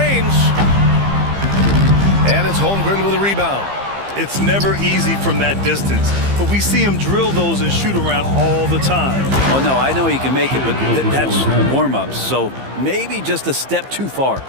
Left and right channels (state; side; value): late; left; 15 ms